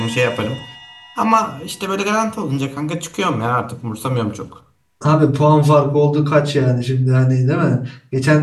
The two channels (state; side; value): identical; both; correlation 1.00